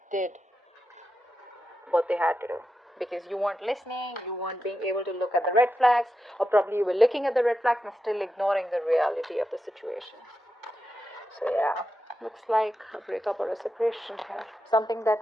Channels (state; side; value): normal; both; correlation 0.88